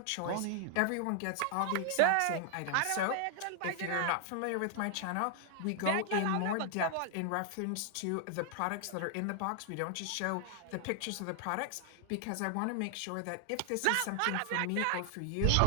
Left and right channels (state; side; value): different; both; correlation 0.00